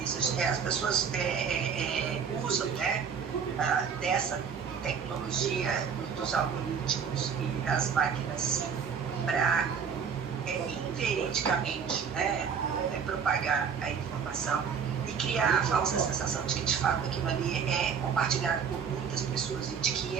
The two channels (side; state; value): left; quieter; 6.8 dB